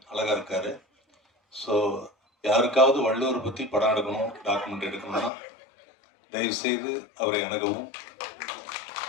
அழகாக இருக்கார். ஸோ யாருக்காவது வள்ளுவரை பற்றி படம் எடுக்கணும், டாக்குமெண்ட் எடுக்கணும்னா தயவுசெய்து அவரை அணுகவும்.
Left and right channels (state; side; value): drops out; right; at 5.3 s